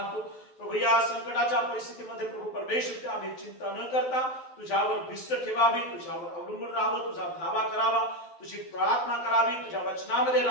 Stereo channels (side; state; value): right; late; 12 ms